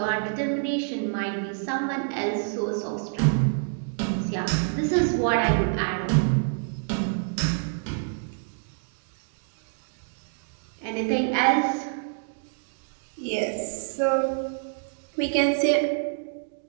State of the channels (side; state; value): left; silent; digital silence